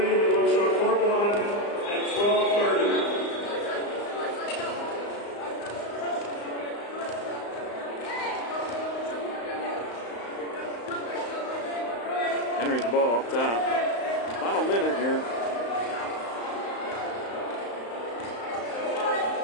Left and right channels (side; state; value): right; late; 35 ms